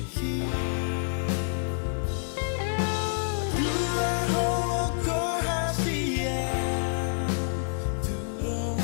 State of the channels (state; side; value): silent; right; digital silence